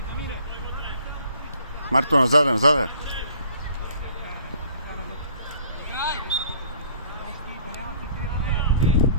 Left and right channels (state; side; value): inverted; both; correlation -0.55